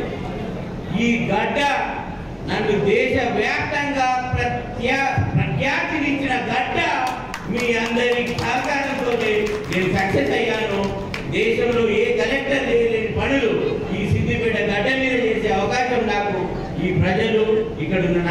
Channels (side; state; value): both; identical; correlation 1.00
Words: ఈ గడ్డ నన్ను దేశవ్యాప్తంగా ప్రఖ్యాతినిచ్చిన గడ్డ. మీ అందరి సహకారంతో నేను సక్సెస్ అయ్యాను. దేశంలో ఏ కలెక్టర్ చేయలేని పనులు ఈ సిద్దిపేట గడ్డ మీద చేసే అవకాశం నాకు ఈ ప్రజలు, ఇక్కడ ఉన్న